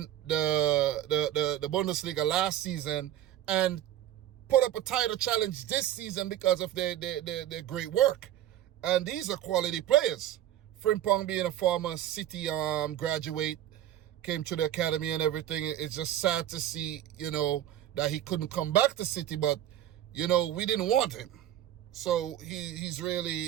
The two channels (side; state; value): left; quieter; 12.1 dB